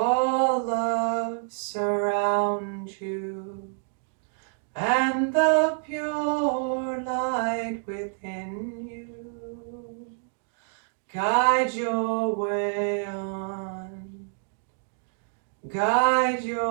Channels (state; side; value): silent; left; 60 dB below the other